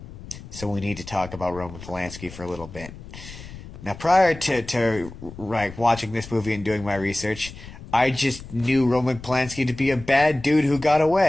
So we need to talk about Roman Polanski for a little bit. Now, prior to watching this movie and doing my research, I just knew Roman Polanski to be a bad dude who got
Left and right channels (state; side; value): noise; left; rumble, 15 dB below the sound